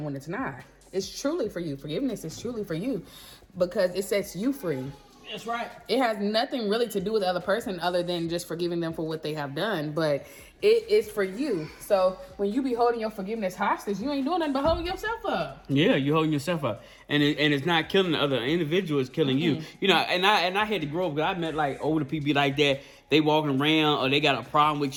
when it's not. It's truly for you. Forgiveness is truly for you because it sets you free. That's right. It has nothing really to do with the other person other than just forgiving them for what they have done. But it is for you. So when you be holding your forgiveness hostage, you ain't doing nothing but holding yourself up. Yeah, you're holding yourself up, and it's not killing the other individual; it's killing you. You know, and I had to grow up because I met like older people like that. They walking around or they got a problem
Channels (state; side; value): identical; both; correlation 1.00